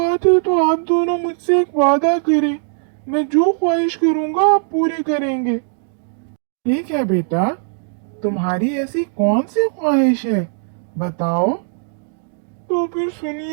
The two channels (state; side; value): silent; left; digital silence